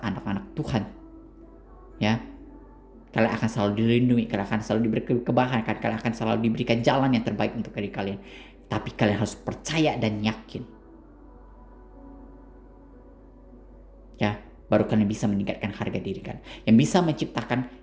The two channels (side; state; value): both; identical; correlation 1.00